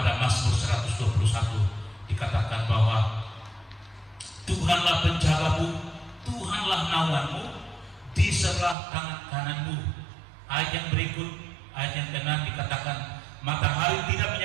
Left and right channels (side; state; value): left; drops out; at 8.8 s